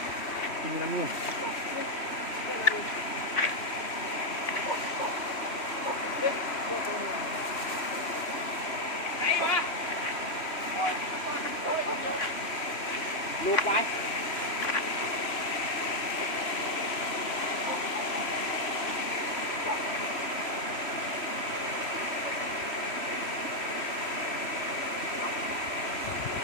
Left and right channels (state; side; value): late; right; 3.1 ms